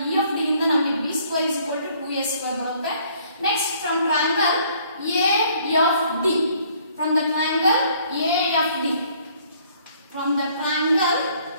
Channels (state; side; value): inverted; both; correlation -0.61